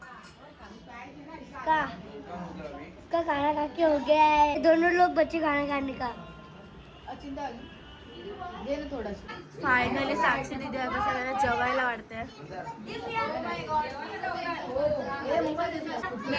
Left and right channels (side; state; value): both; identical; correlation 1.00